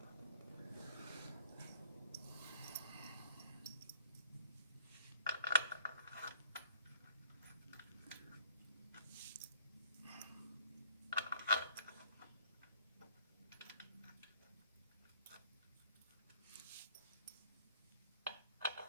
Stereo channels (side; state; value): both; inverted; correlation -0.55